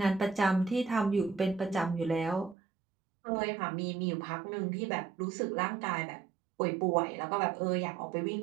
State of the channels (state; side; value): drops out; left; at 2.6 s